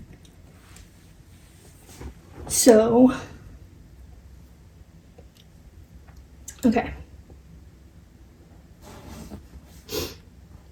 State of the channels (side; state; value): both; identical; correlation 1.00